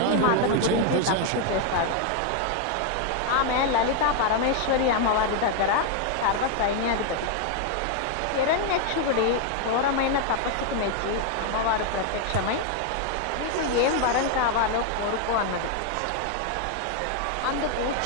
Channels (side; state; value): both; different; correlation 0.00